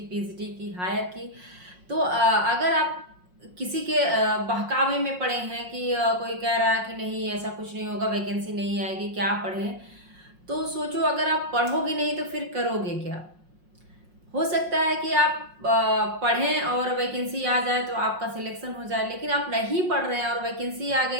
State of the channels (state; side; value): late; left; 5.5 ms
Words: पीजीटी की, हायर की। तो अगर आप किसी के बहकावे में पड़े हैं कि कोई कह रहा है कि नहीं ऐसा कुछ नहीं होगा, वैकेंसी नहीं आएगी, क्या पढ़ें, तो सोचो अगर आप पढ़ोगे नहीं तो फिर करोगे क्या। हो सकता है कि आप पढ़ें और वैकेंसी आ जाए तो आपका सिलेक्शन हो जाए, लेकिन आप नहीं पढ़ रहे हैं और वैकेंसी आ